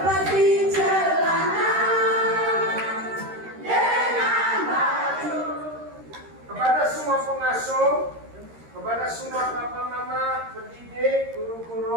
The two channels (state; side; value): late; left; 13 ms